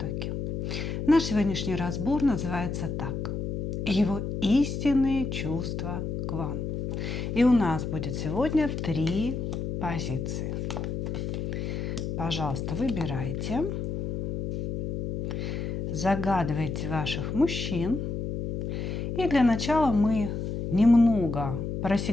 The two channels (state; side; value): noise; left; hum, 3 dB below the sound